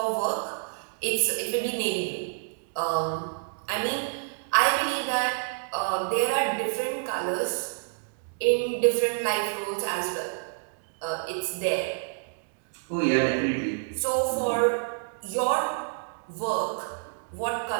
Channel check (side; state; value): left; silent; digital silence